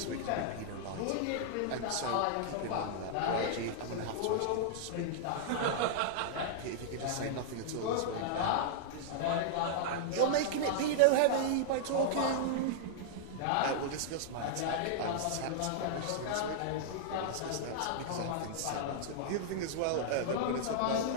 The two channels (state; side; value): different; both; correlation -0.01